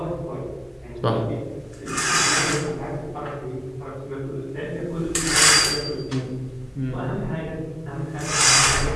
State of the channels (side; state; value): both; identical; correlation 1.00